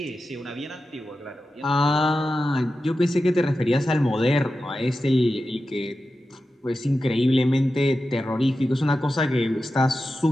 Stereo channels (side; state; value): both; normal; correlation 0.92